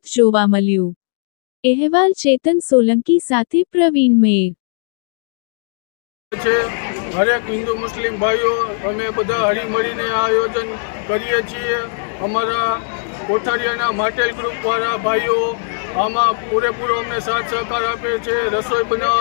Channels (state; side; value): silent; right; 67 dB below the other